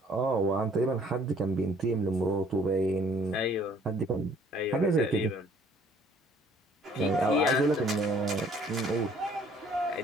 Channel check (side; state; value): both; normal; correlation 0.59